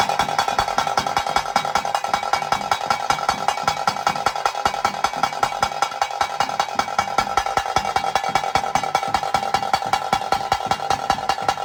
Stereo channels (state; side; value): identical; both; correlation 1.00